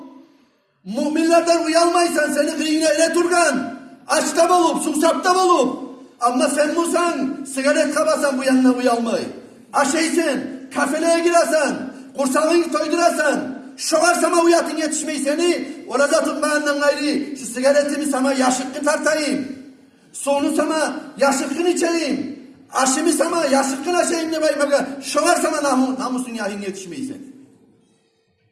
müminlerden uyalmaysan, seni kıyına ele turgan, açta bolup, susapta bolup, ama sen musan, sigaret kabasan bu yanına uyalmay. Aşeysen, kafeleye giresen, kursağını toydurasan, şoğar sana uyatın yetişmeyi seni, orada tutmayandan gayri, şu sigaretimi sana yaşıkkı tartayım, sonu sana yaşıkkın içeyim, aşımı sana yaşıkkın aşayım ne bayım, şoğar sana namusun yahin yetişmeyi seni.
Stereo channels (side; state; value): both; identical; correlation 1.00